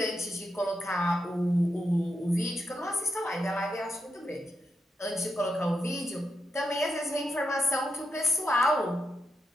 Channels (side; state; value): both; normal; correlation 0.84